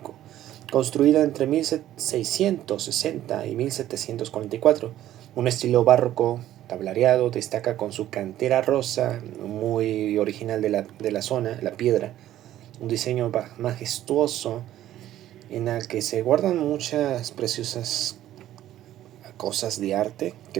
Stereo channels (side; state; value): left; quieter; 13.0 dB